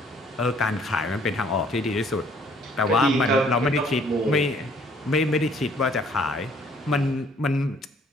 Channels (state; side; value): normal; both; correlation 0.60